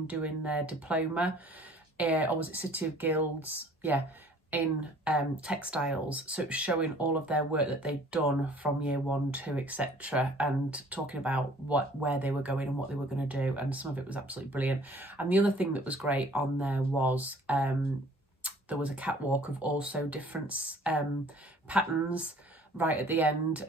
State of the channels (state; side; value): normal; both; correlation 0.53